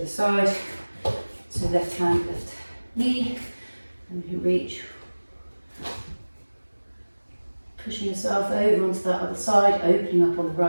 other side. So left hand, left knee. And you reach. Pushing yourself over onto that other side, opening up on the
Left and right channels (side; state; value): both; inverted; correlation -1.00